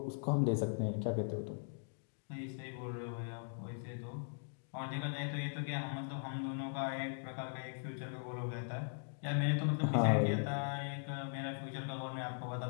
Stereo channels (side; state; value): right; silent; digital silence